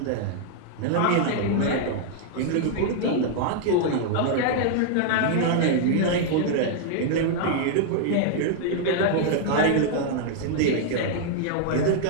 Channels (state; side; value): different; both; correlation -0.01